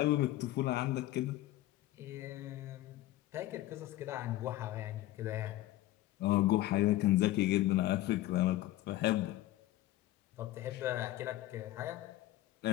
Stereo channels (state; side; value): quieter; right; 15.6 dB